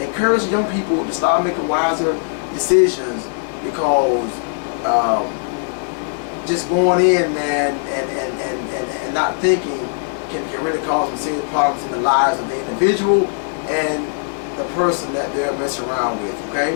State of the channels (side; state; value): right; silent; digital silence